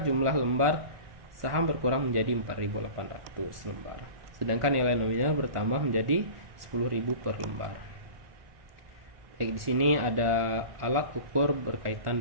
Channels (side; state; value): left; late; 1.4 ms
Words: jumlah lembar saham berkurang menjadi 4.800 lembar, sedangkan nilai nominal bertambah menjadi 10.000 per lembar. Baik, di sini ada alat ukur berkaitan